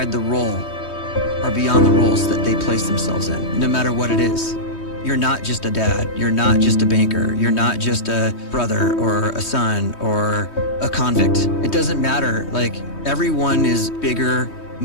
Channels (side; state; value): right; late; 3.2 ms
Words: the role or beyond the roles that they place themselves in, no matter what it is. You're not just a dad, you're not just a banker, you're not just a brother or a son or a convict. It doesn't matter. Like, everyone is bigger,